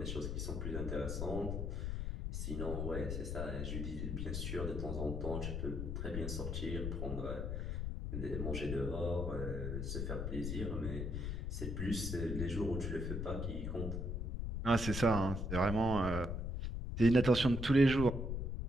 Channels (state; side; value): noise; left; rumble, 2 dB below the sound